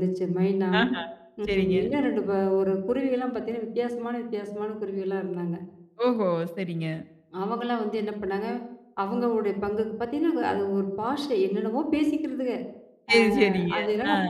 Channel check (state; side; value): identical; both; correlation 1.00